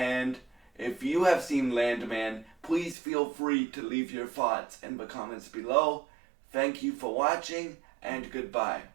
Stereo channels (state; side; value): drops out; left; at 3.0 s